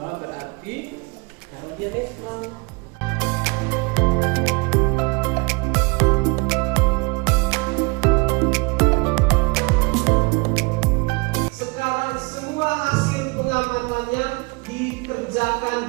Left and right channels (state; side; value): quieter; left; 28.6 dB